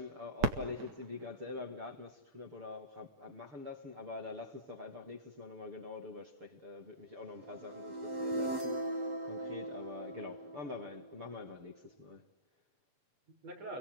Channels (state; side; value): late; left; 8.1 ms